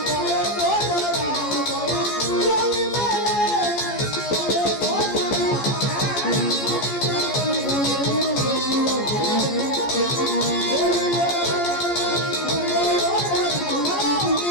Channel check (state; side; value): late; right; 14 ms